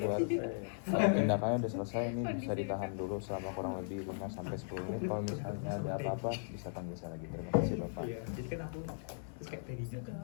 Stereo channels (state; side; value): silent; right; 53 dB below the other